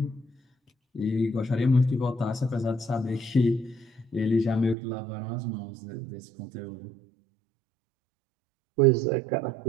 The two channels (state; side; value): drops out; left; at 4.8 s